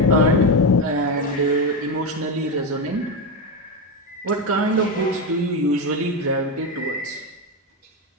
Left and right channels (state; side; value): normal; both; correlation 0.12